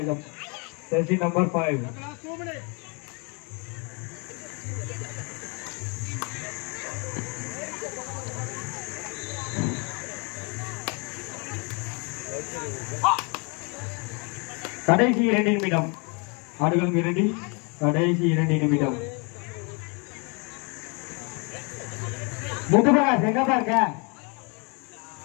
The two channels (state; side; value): quieter; right; 32.9 dB